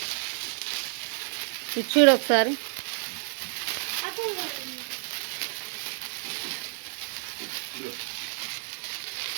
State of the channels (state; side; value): silent; left; 58 dB below the other